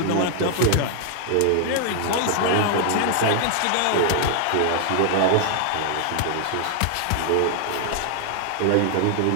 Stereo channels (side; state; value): both; different; correlation 0.00